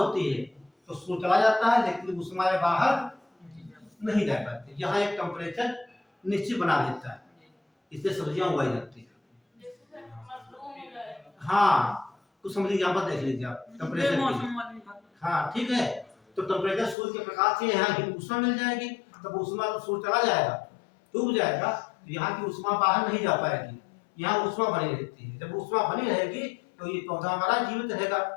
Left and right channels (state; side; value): drops out; right; at 16.9 s